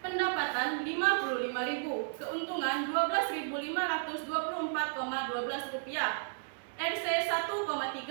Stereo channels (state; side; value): silent; left; digital silence